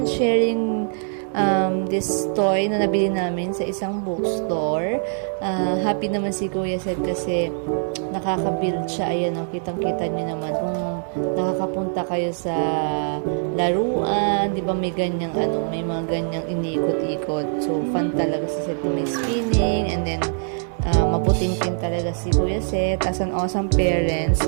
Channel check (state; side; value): silent; left; digital silence